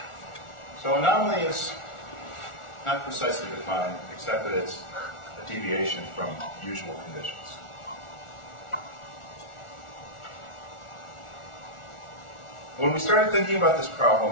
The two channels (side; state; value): right; late; 1.4 ms